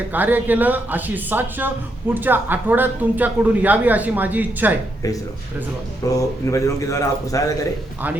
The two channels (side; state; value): both; normal; correlation 0.79